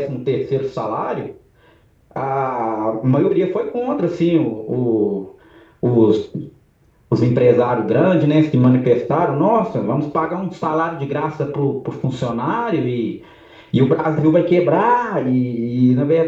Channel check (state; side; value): identical; both; correlation 1.00